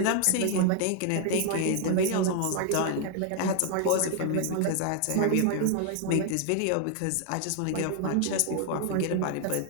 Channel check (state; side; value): different; both; correlation 0.00